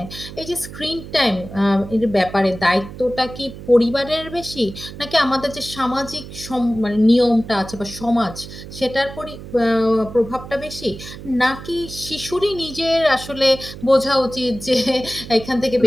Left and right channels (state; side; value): noise; right; hum, 13 dB below the sound